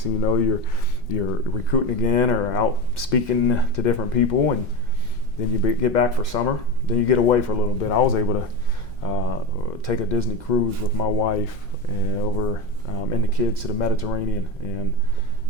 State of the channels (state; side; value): normal; both; correlation 0.21